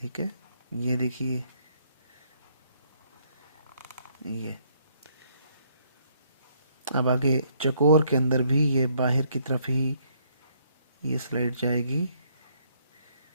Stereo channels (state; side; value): inverted; both; correlation -0.69